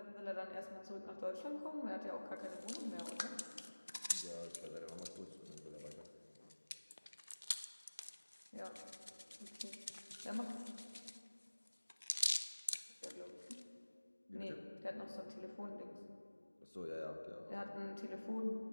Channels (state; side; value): inverted; both; correlation -1.00